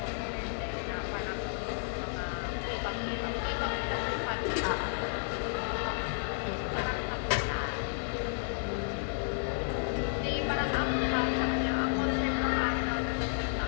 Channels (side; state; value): right; silent; digital silence